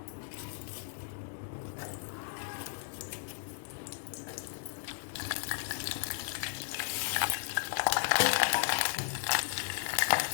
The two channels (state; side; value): silent; right; digital silence